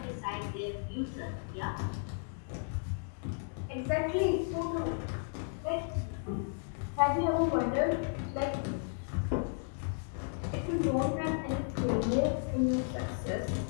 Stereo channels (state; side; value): silent; right; 55 dB below the other